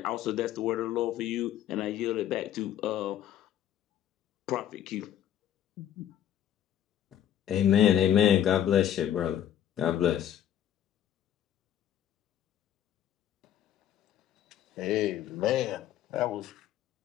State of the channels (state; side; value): quieter; right; 10.7 dB